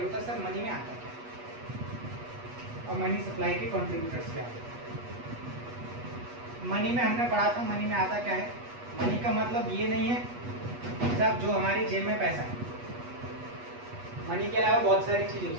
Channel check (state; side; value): late; left; 8.2 ms